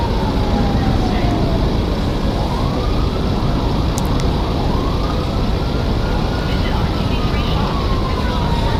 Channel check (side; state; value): both; identical; correlation 1.00